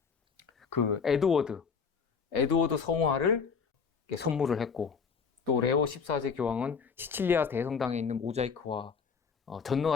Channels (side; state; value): right; quieter; 5.8 dB